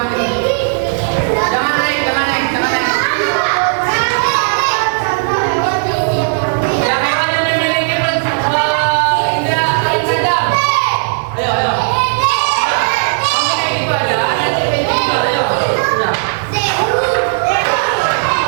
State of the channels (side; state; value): left; silent; digital silence